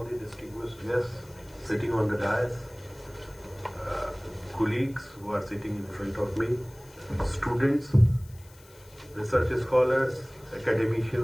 the distinguished guests sitting on the dais, colleagues who are sitting in front of me, students, research scholars,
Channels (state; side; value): noise; left; hiss, 25 dB below the sound